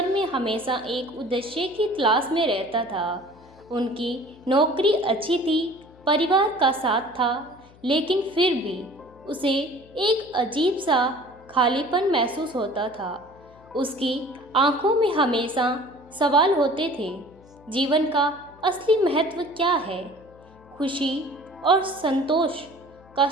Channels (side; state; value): left; noise; hum, 25 dB below the sound